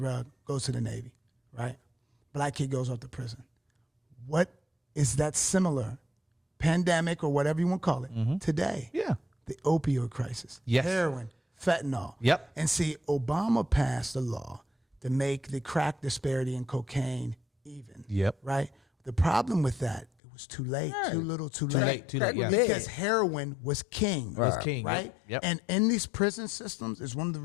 goes to the Navy, right? Black kid goes off to prison. What is that similar? Pandemic or whatever you want to call it today. Yeah. The opioid crisis. Yes. Heroin, fentanyl. Yep. And see, Obama passed a law to make the crack disparity in cocaine even. Yep. Right? The problem with that, it was too late, too little, too Too late. late, too late, yeah. Because heroin was king. Was king, Right? yep. And in these prison systems is one of the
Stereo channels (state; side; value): drops out; right; at 20.1 s